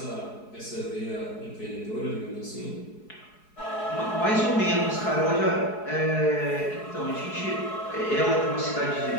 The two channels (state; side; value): late; right; 4.7 ms